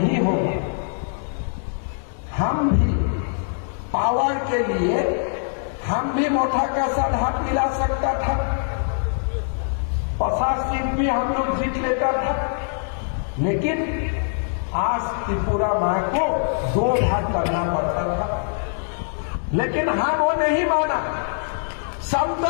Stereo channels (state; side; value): silent; right; digital silence